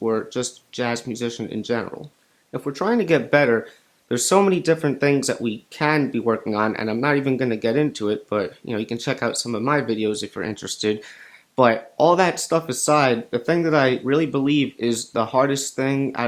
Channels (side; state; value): both; identical; correlation 1.00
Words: just jazz musician in general. If we're trying to get better, there's so many different things that we can be working on, and I'm not even going to get into it, but you can check out some of my videos if you're interested. But all that stuff aside, the thing that I really believe is the hardest thing